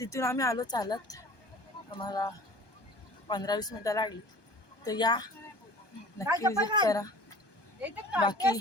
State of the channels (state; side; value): late; right; 1.2 ms